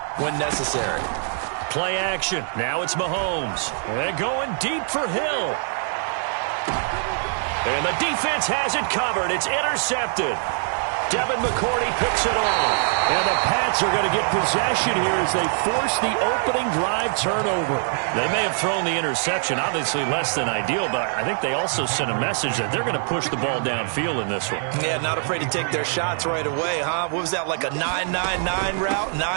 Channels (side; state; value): left; silent; digital silence